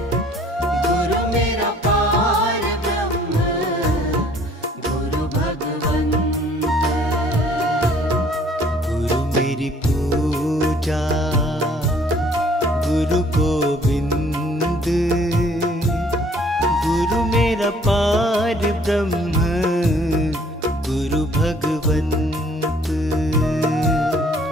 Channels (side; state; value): both; normal; correlation 0.58